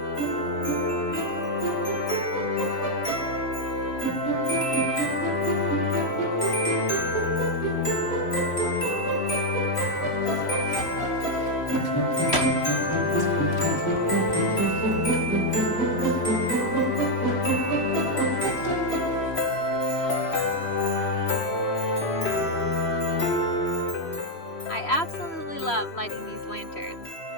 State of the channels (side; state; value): right; late; 3.1 ms